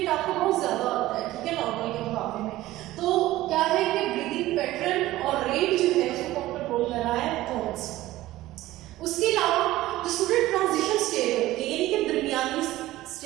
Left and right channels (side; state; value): left; quieter; 16.3 dB